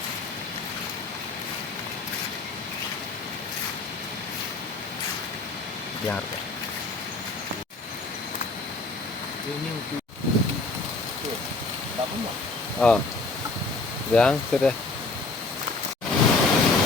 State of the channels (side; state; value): right; quieter; 3.6 dB